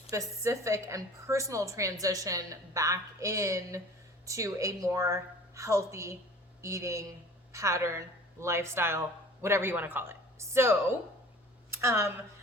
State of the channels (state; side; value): normal; both; correlation 0.45